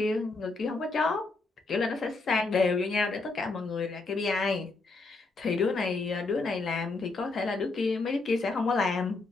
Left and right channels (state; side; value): quieter; right; 3.6 dB